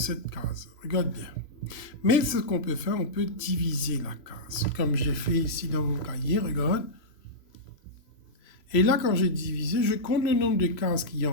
case. Regarde bien. Mais ce qu'on peut faire, on peut diviser la case. Comme j'ai fait ici dans mon cahier, regarde. Et là, quand j'ai divisé, je compte le nombre de cases qu'il y a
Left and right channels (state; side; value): late; right; 3.0 ms